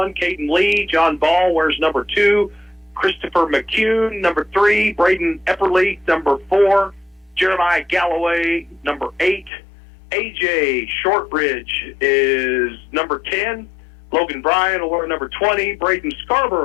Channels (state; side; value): drops out; right; at 9.5 s